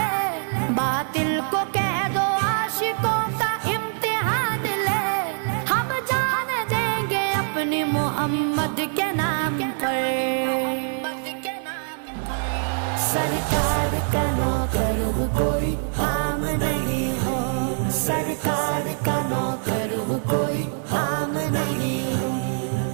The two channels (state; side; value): silent; left; digital silence